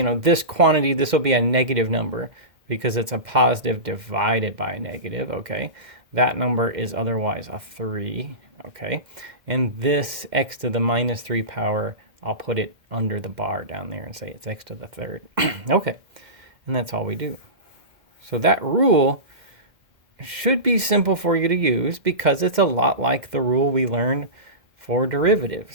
quantity, this will be a negative number because it's a positive divided by a negative, okay? That number is otherwise a 3, okay? And this x to the -3 power, I'll put it under the bar down there and say it's x to the 3rd. Okay, and that's all we do. So that rule should be simple for you to use because it's a lot like the rule we learned for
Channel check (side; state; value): left; late; 2.1 ms